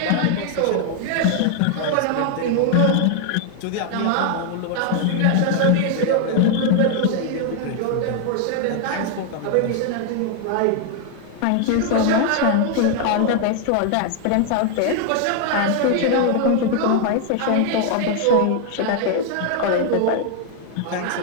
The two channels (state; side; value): different; both; correlation 0.00